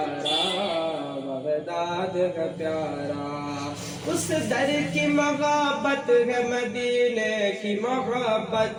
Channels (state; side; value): identical; both; correlation 1.00